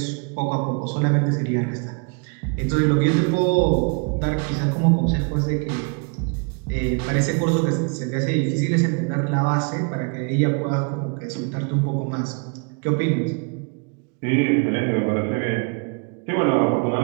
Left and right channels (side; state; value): left; quieter; 35.0 dB